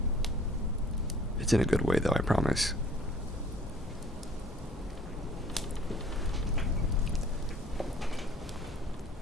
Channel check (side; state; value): both; normal; correlation 0.53